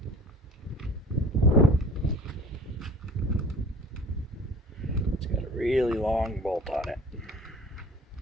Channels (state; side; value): normal; both; correlation 0.46